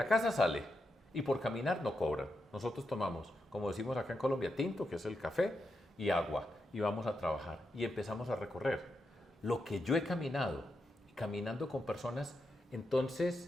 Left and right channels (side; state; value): both; normal; correlation 0.85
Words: casa sale y por caminar no cobran. Nosotros tomamos, como decimos acá en Colombia, tinto, que es el café, y agua, y vamos a trabajar. Y empezamos a recorrer. Lo que yo he caminado, caminando con personas,